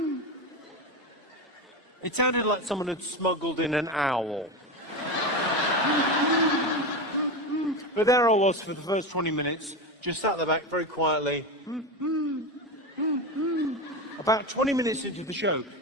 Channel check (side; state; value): both; normal; correlation 0.19